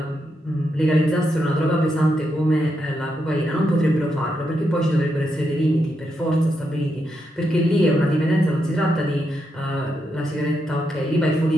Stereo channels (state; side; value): normal; both; correlation 0.83